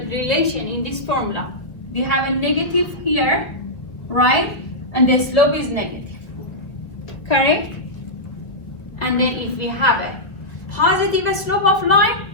relation in this formula. We have a negative here, right? And the slope is negative. Correct? And then if we have a positive slope of line,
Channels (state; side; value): late; right; 2.0 ms